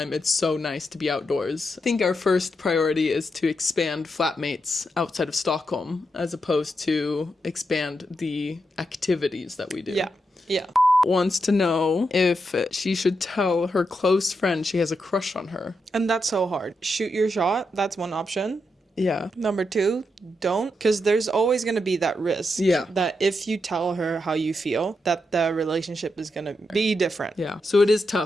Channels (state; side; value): normal; both; correlation 0.84